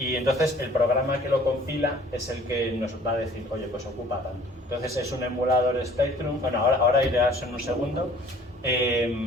entonces el programa que lo compila es el que nos va a decir, oye, pues ocupa tanto. Entonces es un emulador Spectrum, ahora iré a eso en un segundo.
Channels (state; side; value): normal; both; correlation 0.52